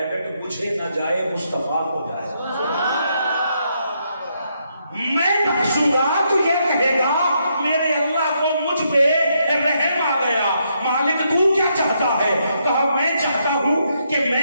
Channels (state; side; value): inverted; both; correlation -0.77